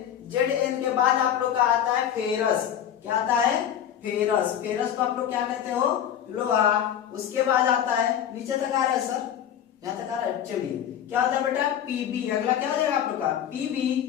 के बाद आप लोग का आता है फेरस। क्या आता है? फेरस। फेरस को आप लोग क्या कहते हो? लोहा। उसके बाद आता है, नीचे तक आ रहा है सर, यहाँ तक आ रहा है, चलिए, क्या होता है बेटा? Pb। अगला क्या हो जाएगा आप लोग का? Pb,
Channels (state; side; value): quieter; right; 9.8 dB